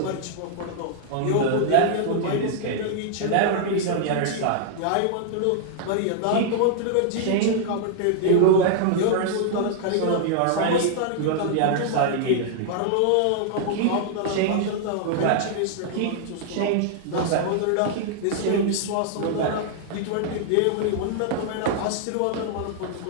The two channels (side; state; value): both; different; correlation -0.01